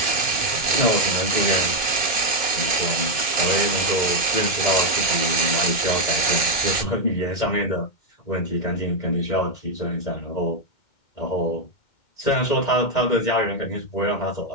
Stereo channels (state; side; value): late; right; 2.1 ms